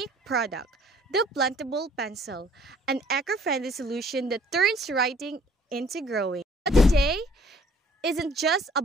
product, the Plantable Pencil, an eco-friendly solution that turns writing into growing. But today, isn't just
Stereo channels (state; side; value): normal; both; correlation 0.57